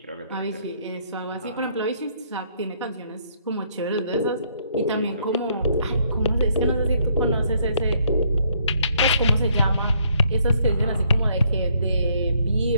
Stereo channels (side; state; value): both; inverted; correlation -0.68